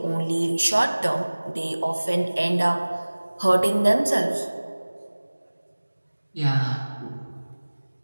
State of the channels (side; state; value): both; inverted; correlation -1.00